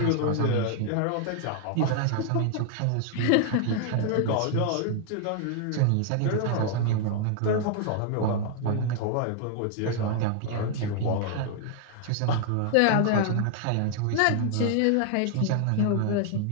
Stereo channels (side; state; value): both; different; correlation 0.00